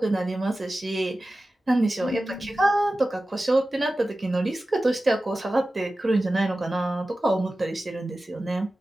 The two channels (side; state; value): both; normal; correlation 0.95